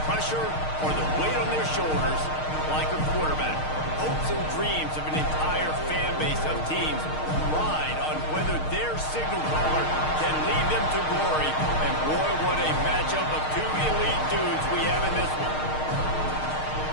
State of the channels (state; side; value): late; right; 6.5 ms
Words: pressure or the weight on their shoulders like a quarterback. Hopes and dreams of an entire fan base of teams ride on whether their signal caller can lead them to glory. And boy, what a matchup of two elite dudes we have in this one.